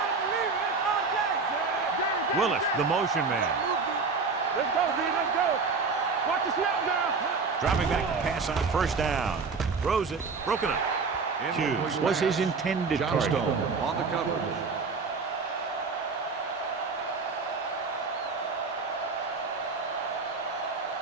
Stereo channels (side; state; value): left; quieter; 4.6 dB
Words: believe it. It's our day. Willis, the motion man. Let's go, D. Let's go. Watch the snap now. Dropping back to pass on 1st down. Throws it. Broken up. Hughes was his intended target. On the coverage.